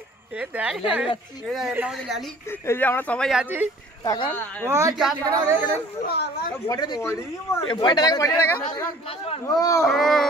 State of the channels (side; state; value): both; normal; correlation 0.51